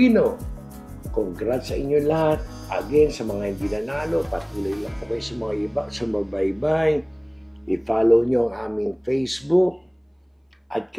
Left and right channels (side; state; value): both; identical; correlation 1.00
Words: Congrats sa inyo lahat. Again, sa mga hindi nanalo, patuloy lang po kayo sa mga iba, sumabaybay. I-follow nyo ang aming Facebook at